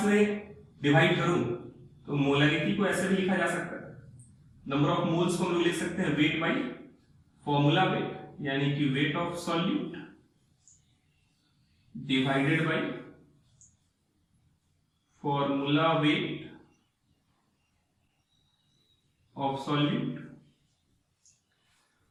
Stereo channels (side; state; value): both; identical; correlation 1.00